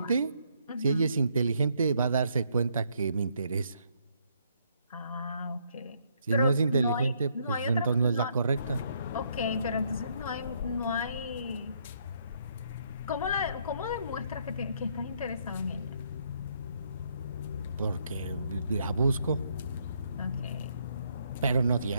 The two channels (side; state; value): both; inverted; correlation -0.71